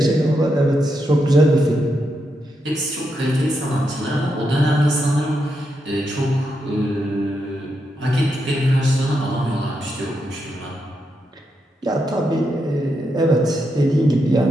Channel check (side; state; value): both; normal; correlation 0.83